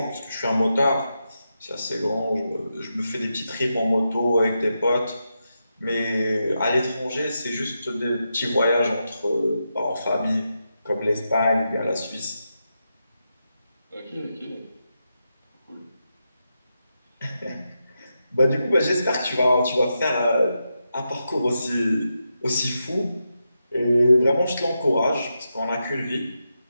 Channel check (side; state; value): both; inverted; correlation -0.87